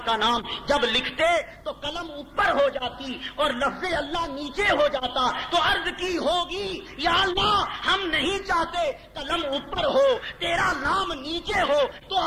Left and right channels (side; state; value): both; identical; correlation 1.00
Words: کا نام۔ جب لکھتے تو قلم اوپر ہو جاتی اور لفظ اللہ نیچے ہو جاتا، تو عرض کی ہوگی یا اللہ ہم نہیں چاہتے قلم اوپر ہو، تیرا نام نیچے ہو، تو